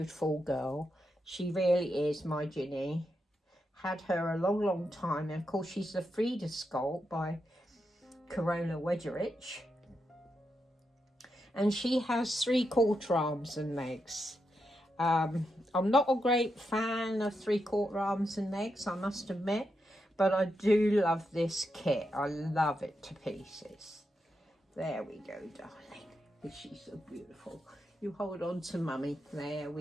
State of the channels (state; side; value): normal; both; correlation 0.85